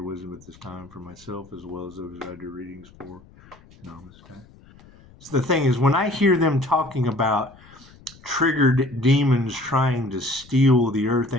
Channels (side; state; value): left; noise; rumble, 24 dB below the sound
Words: wisdom at this time for myself as well as those I do readings for. Namaste. So the thing is, when I hear them talking about triggered demons trying to steal the earth